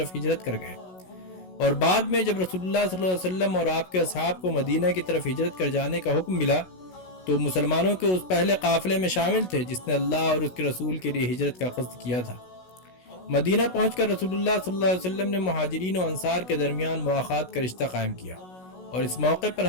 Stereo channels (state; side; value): late; right; 16 ms